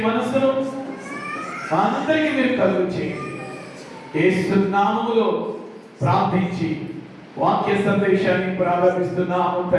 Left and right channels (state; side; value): identical; both; correlation 1.00